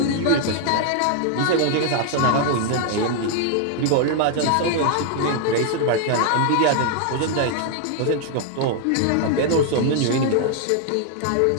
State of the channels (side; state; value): both; different; correlation 0.00